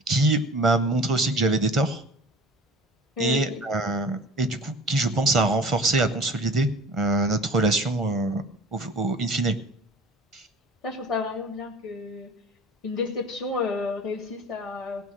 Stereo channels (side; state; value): both; normal; correlation 0.43